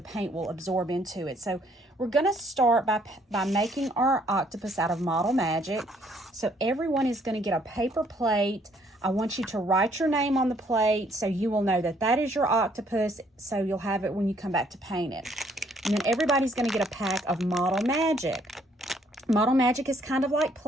paint will absorb into it. So we're going to start by making our octopus out of Model Magic. So everyone is going to get a paper plate. I want you to write your name on the plate so you will know that that is your octopus, so you'll have it when you come back to paint it. And then everybody's going to get a pack of Model Magic. Model Magic is kind of like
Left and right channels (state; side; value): normal; both; correlation 0.65